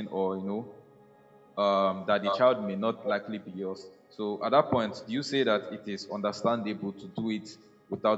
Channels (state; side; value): identical; both; correlation 1.00